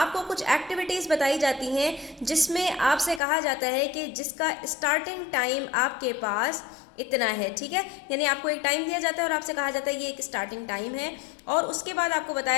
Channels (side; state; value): right; drops out; at 3.2 s